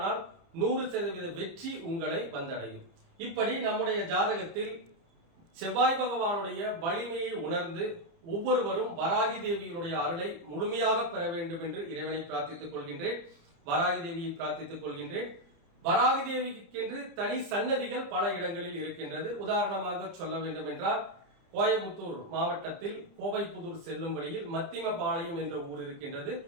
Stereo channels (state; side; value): late; left; 30 ms